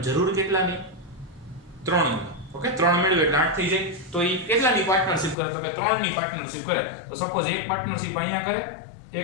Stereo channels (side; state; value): right; drops out; at 5.4 s